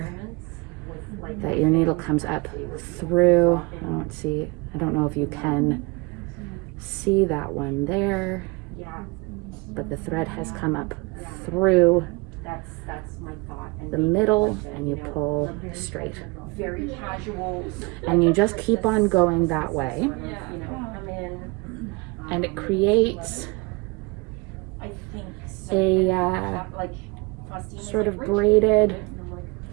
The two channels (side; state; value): left; quieter; 26.8 dB